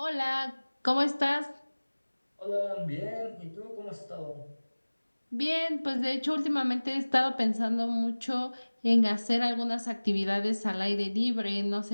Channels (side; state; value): both; inverted; correlation -1.00